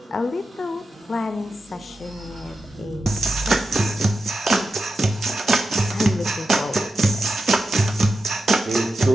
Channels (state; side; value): normal; both; correlation 0.90